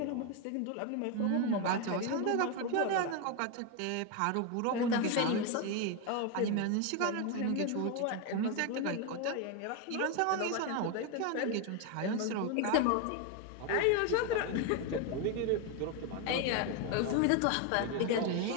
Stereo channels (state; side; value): different; both; correlation 0.02